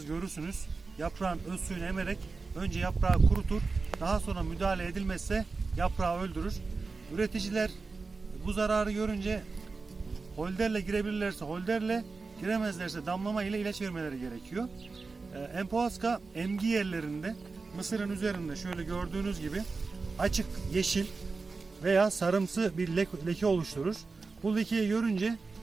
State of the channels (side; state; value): left; quieter; 4.1 dB